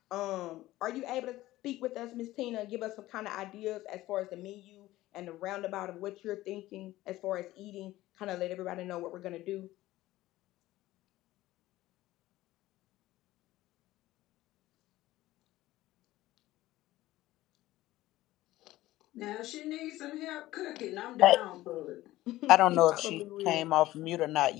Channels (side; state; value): right; quieter; 16.5 dB